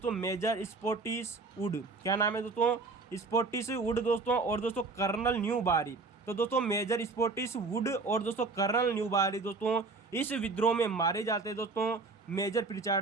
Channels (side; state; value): left; quieter; 4.0 dB